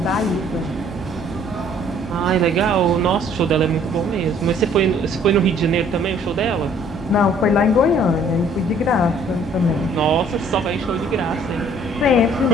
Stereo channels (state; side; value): normal; both; correlation 0.59